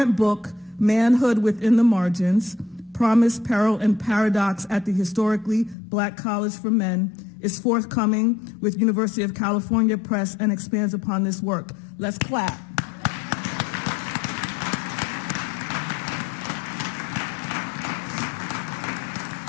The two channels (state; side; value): drops out; right; at 5.8 s